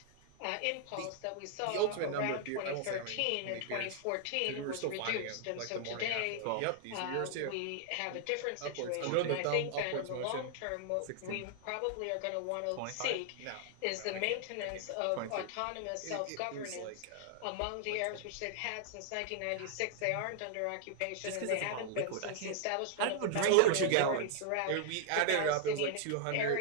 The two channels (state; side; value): different; both; correlation 0.00